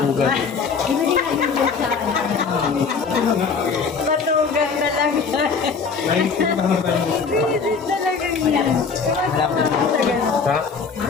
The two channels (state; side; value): quieter; right; 5.3 dB